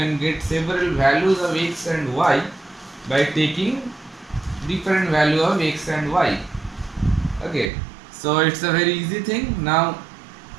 get several values of x and y by taking different value of x and y. Okay, so it's a very easy thing. Now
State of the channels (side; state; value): left; drops out; at 7.7 s